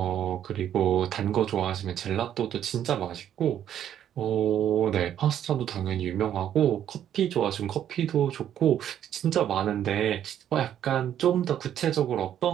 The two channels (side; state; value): left; quieter; 10.3 dB